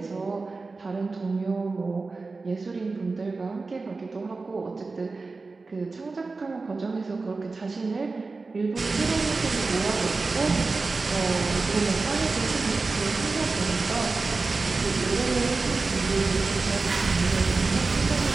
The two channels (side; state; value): left; quieter; 3.9 dB